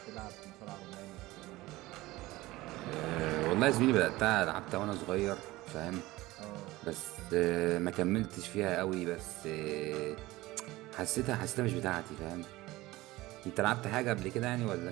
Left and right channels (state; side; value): quieter; left; 18.7 dB